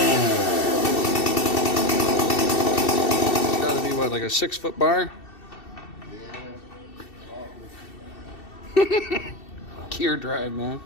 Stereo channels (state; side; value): late; right; 2.7 ms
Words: Like a 6-foot bar? Yeah. Gear drive, man.